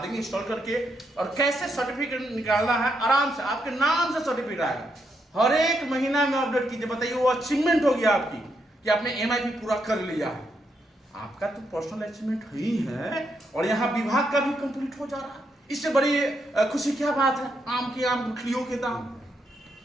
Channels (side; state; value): both; normal; correlation 0.79